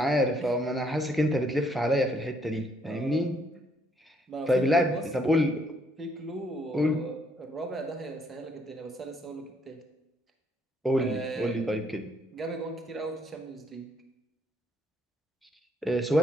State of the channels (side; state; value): both; normal; correlation 0.69